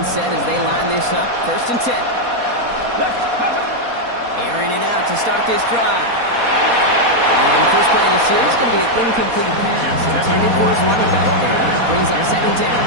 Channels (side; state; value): left; late; 4.2 ms